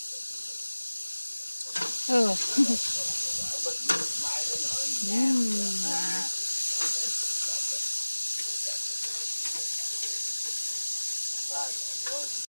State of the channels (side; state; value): both; inverted; correlation -1.00